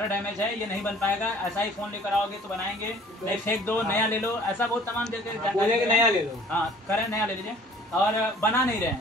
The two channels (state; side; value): normal; both; correlation 0.52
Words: डैमेज है ये नहीं बन पाएगा ऐसा ही फ़ोन लेकर आओगे तो बनाएंगे नहीं फेंक दो नया ले लो ऐसा बहुत तमाम जगह नया ले लो। हाँ करें नया ले लीजिए और बना नहीं रहे